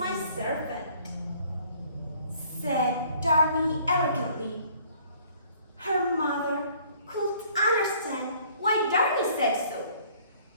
servant," said Darmi arrogantly. Her mother couldn't understand why Darmi said so,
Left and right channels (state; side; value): inverted; both; correlation -0.58